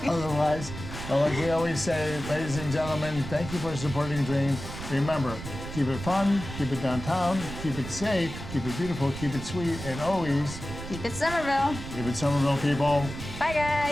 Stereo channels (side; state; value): right; noise; rumble, 9 dB below the sound